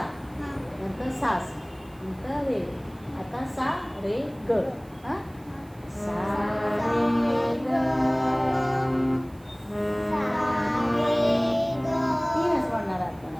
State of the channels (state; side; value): noise; right; hiss, 28 dB below the sound